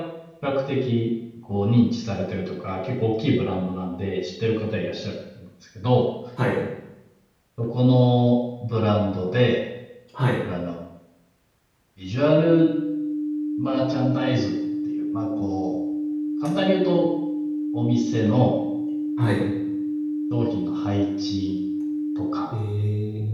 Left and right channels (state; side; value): identical; both; correlation 1.00